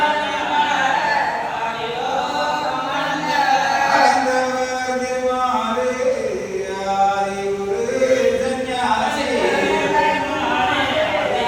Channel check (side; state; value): both; identical; correlation 1.00